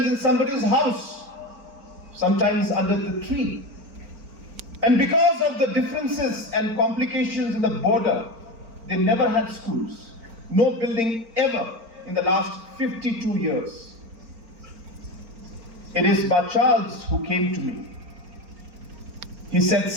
in somebody's house, sometimes under the tree. And because of the differences and complications in the border, they never had schools. No building ever in the last 52 years. It is Bacharles who came to me. He said,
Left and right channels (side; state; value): left; late; 4.4 ms